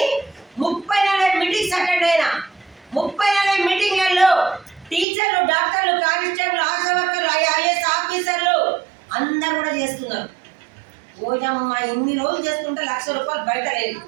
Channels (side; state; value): left; drops out; at 5.1 s